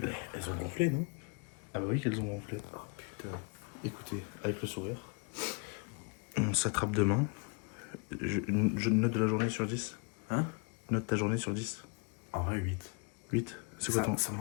elles ont gonflé, non? Ah bah oui qu'elles ont gonflé. Oh putain. Écoutez, avec le sourire. On s'attrape demain. Je note de la journée sur 10. Hein? Note ta journée sur 10. En vrai, 8. 8. C'est quoi ton... Ça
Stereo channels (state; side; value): quieter; right; 33.7 dB